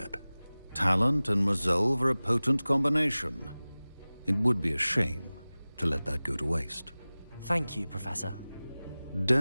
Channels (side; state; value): both; inverted; correlation -0.98